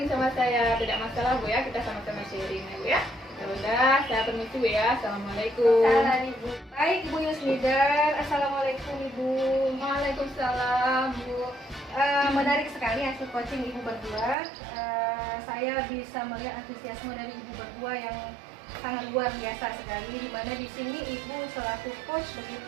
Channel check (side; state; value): left; drops out; at 14.4 s